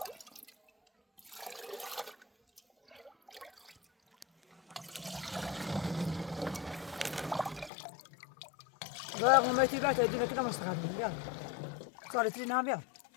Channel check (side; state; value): right; drops out; at 7.7 s